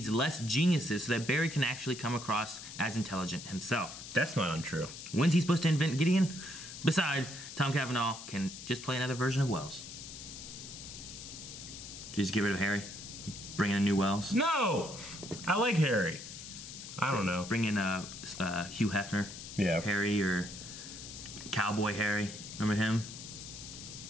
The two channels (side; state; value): left; noise; hiss, 11 dB below the sound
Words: less geniuses so that Barry can actually come across as intelligent himself. That's not untrue. When's he supposed to invent Gideon? Besides, Tom Cavanaugh can just play another version of Wells. Just get rid of Harry? Bring in a new Wells? No! I like Harry. I don't know. Bring in Hugh Hefner. Yeah. Harry or Cowboy Harry. Remember him?